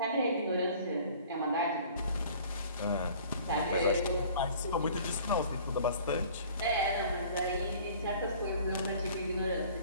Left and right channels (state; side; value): inverted; both; correlation -0.49